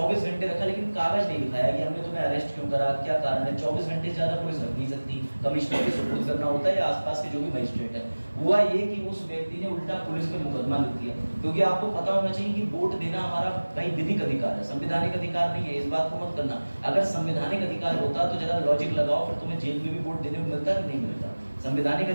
घंटे रखा, लेकिन कागज नहीं दिखाया कि हमने तुम्हें अरेस्ट क्यों करा, क्या कारण है। 24 घंटे से ज्यादा पुलिस रख नहीं सकती, कमिश्नर के सुपुर्द करना होता है या आसपास के जो भी मजिस्ट्रेट है। हुआ ये कि उस व्यक्ति ने उल्टा पुलिस पे मुकदमा लिख दिया, क्योंकि आपको पता होना चाहिए कि वोट देना हमारा भाई विधिक अधिकार है, संवैधानिक अधिकार नहीं है। इस बात को मत करना। अगर संवैधानिक अधिकार होता तो जरा लॉजिक लगाओ, फिर तुम्हें जेल में भी वोट देने को मिलता कि नहीं मिलता। संवैधानिक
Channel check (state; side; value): inverted; both; correlation -1.00